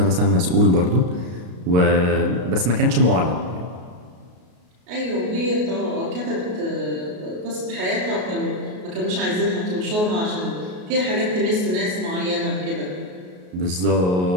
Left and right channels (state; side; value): late; left; 33 ms